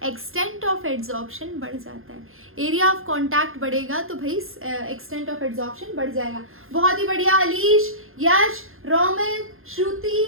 एक्सटेंट ऑफ एड्सॉर्प्शन बढ़ जाता है। एरिया ऑफ कांटेक्ट बढ़ेगा तो भाई एक्सटेंट ऑफ एड्सॉर्प्शन बढ़ जाएगा। बहुत ही बढ़िया अलीश, यश, रोमिल, श्रुति,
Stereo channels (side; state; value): left; late; 0.60 ms